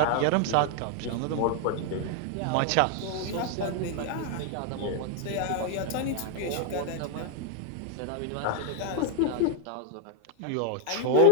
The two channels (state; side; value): different; both; correlation 0.01